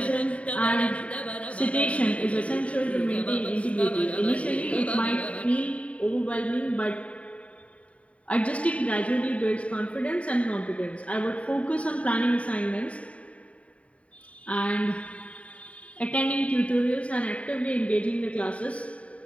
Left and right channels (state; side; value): late; right; 0.065 ms